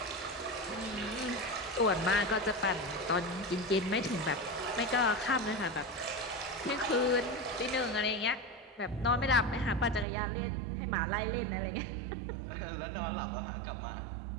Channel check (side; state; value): left; drops out; at 10.1 s